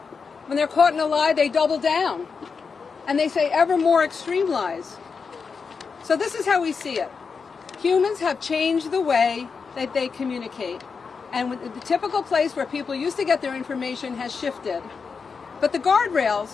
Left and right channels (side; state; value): right; quieter; 5.3 dB